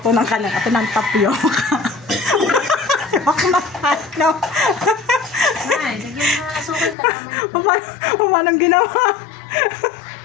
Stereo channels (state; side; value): drops out; right; at 7.0 s